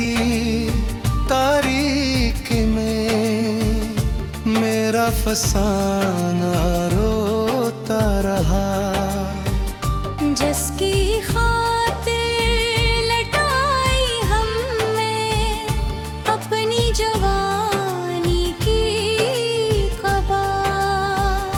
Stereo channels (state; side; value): identical; both; correlation 1.00